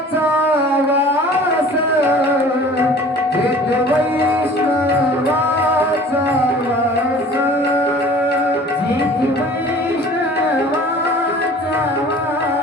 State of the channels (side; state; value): both; normal; correlation 0.46